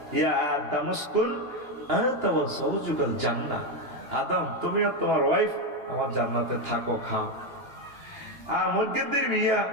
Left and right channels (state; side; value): late; left; 2.8 ms